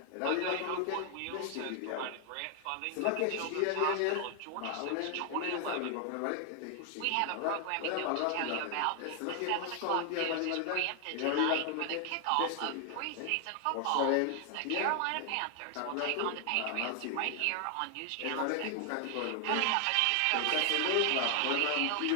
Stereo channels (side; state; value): both; different; correlation 0.00